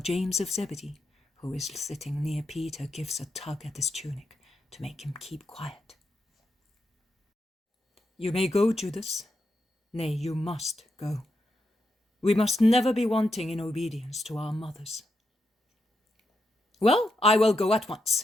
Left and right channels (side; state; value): both; normal; correlation 0.84